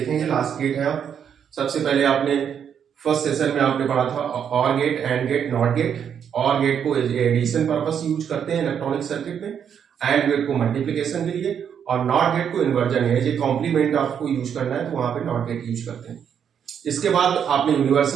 लास्ट गेट है। आप सबसे पहले आपने फर्स्ट सेशन में आपने पढ़ा था or gate, and gate, not gate. Or gate को एडिशन पर्पस यूज करते हैं इलेक्ट्रॉनिक सर्किट में, एंड गेट को मल्टीप्लिकेशन के लिए, और नॉट गेट को इन्वर्जन है, ये कॉम्प्लीमेंट आपको यूज करना है तो वहां पे नॉट गेट यूज करते हैं। इसके बाद आपने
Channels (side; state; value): left; quieter; 8.1 dB